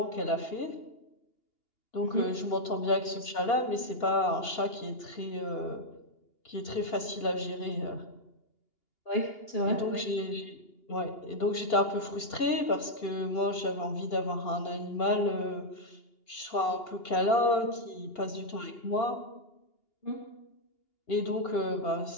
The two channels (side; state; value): right; late; 2.8 ms